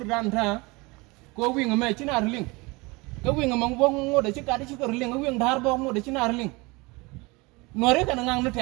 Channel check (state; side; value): quieter; left; 25.1 dB